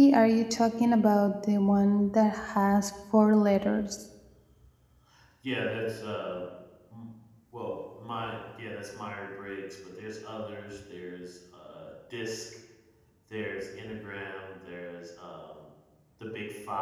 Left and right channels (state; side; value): identical; both; correlation 1.00